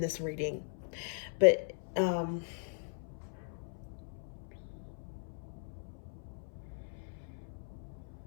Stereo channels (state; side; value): silent; right; 52 dB below the other